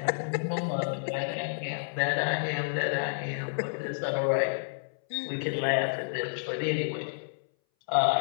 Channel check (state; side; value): silent; right; 58 dB below the other